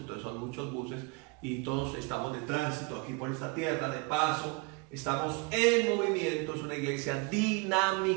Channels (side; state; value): left; quieter; 28.7 dB